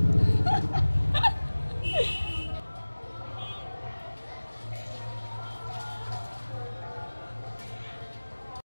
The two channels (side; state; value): both; inverted; correlation -1.00